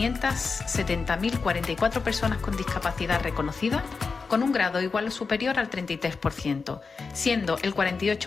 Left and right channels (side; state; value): right; quieter; 4.7 dB